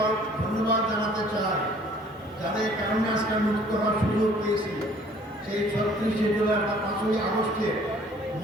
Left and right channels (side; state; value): both; normal; correlation 0.55